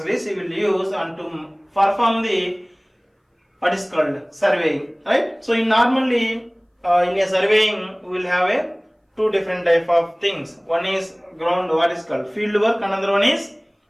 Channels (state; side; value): identical; both; correlation 1.00